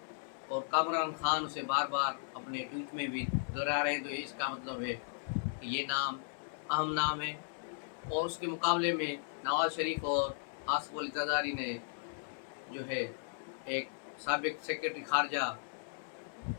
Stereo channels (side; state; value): right; silent; digital silence